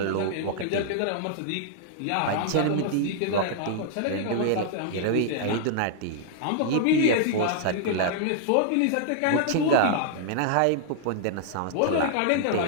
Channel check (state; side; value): different; both; correlation -0.01